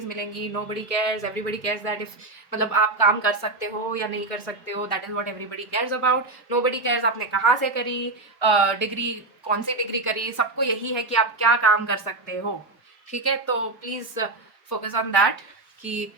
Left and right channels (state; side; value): quieter; left; 3.2 dB